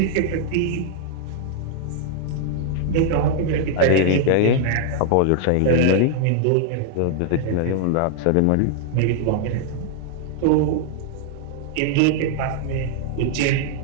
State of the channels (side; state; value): both; different; correlation -0.01